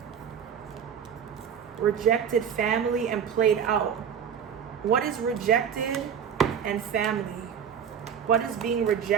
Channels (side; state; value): left; quieter; 8.0 dB